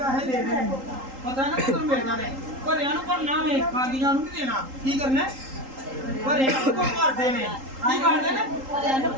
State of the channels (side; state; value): left; late; 3.8 ms